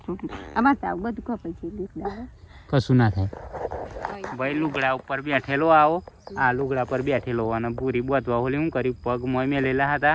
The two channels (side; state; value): both; identical; correlation 1.00